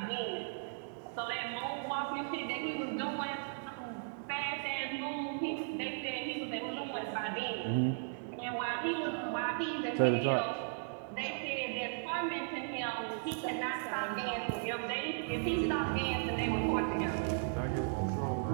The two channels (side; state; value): left; silent; digital silence